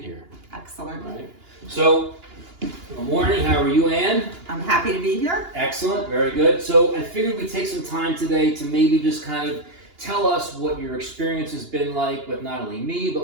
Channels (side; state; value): left; late; 2.9 ms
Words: here. Excellent. Right. So, good morning. How are you, Ann? I'm happy to be here. Excellent. Very good. So, I figured we'd take some time today to maybe just kind of tell us what your experience has been like with not only me,